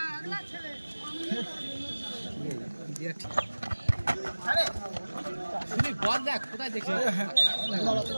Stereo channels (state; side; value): inverted; both; correlation -1.00